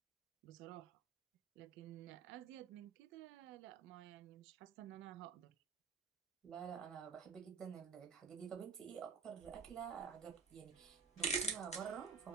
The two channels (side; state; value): left; quieter; 5.1 dB